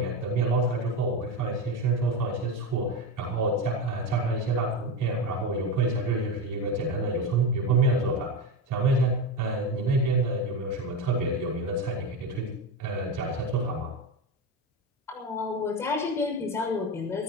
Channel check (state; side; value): normal; both; correlation 0.17